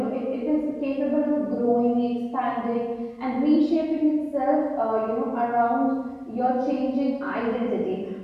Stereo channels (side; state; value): both; identical; correlation 1.00